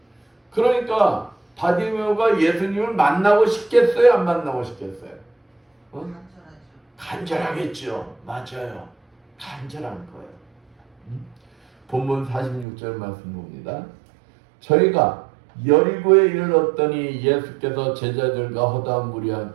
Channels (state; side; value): drops out; left; at 12.7 s